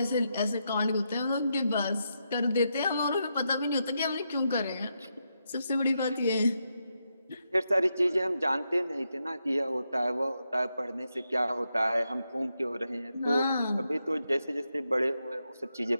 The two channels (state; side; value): inverted; both; correlation -0.84